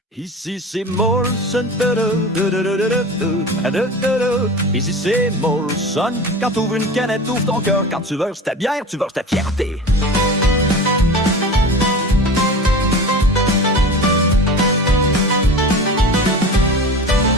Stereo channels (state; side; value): normal; both; correlation 0.33